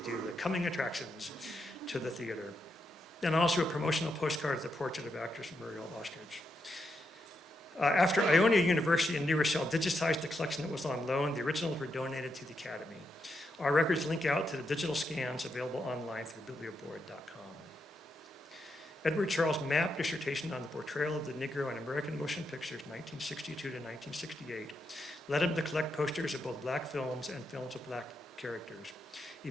do the coming attractions to the theater. And also a promotional postcard of the portrait of actress Muriel Ostrich. After Ionia University in New Rochelle digitized the collection that was on loan, the originals were donated to the Academy. Our records link out to the digital scans available online through biblioboard.com. Edward Charles' Mapp dissertation on the portrayal of the Negro in American motion pictures, 1962 to 1968, led him to collect posters of both black films and films of black characters.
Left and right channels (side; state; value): both; normal; correlation 0.83